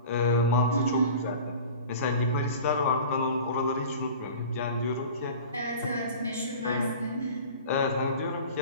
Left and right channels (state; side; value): inverted; both; correlation -0.39